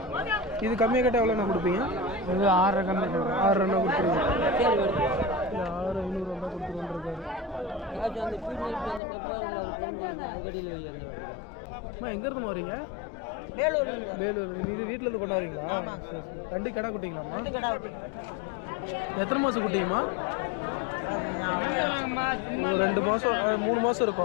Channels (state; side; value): drops out; right; at 9.0 s